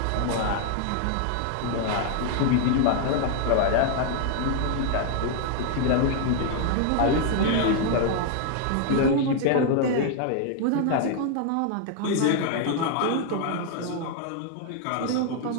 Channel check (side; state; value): both; different; correlation 0.00